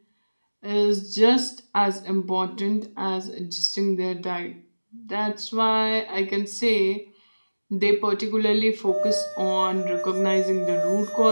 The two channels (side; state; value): both; inverted; correlation -1.00